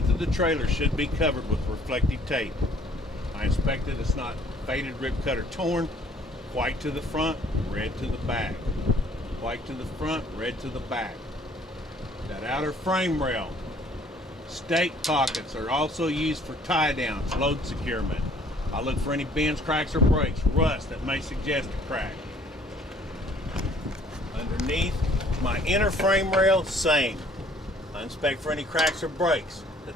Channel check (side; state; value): both; normal; correlation 0.57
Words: of the trailer should be covered with reflective tape. I inspect it, it's not faded, ripped, cut, or torn. White to the front, red to the back. White to the front, red to the back. That outer frame rail, stake pockets are also used for tie downs, load securement. I look for any bends, cracks, or breaks, rust that may suggest a crack. Underneath my inner frame rail, same. I inspect for any cracks or breaks,